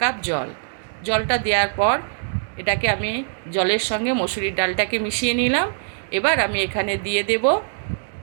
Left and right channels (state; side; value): silent; left; digital silence